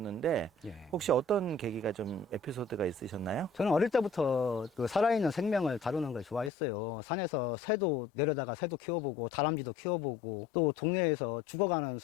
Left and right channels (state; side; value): drops out; right; at 6.5 s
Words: 예. 혹시 어떤 계기가 좀 에피소드가 있으셨나요? 저는 어릴 때부터 그 살아있는 생명을 다루는 걸 좋아했어요. 산에서 새도 내려다가 새도 키워보고, 다람쥐도 키워보고, 또 동네에서 죽어가는